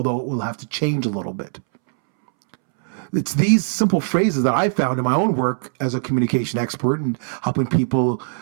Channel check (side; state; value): left; silent; 65 dB below the other